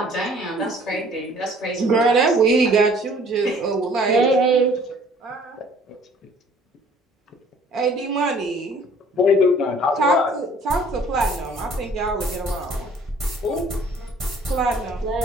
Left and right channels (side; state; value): both; normal; correlation 0.55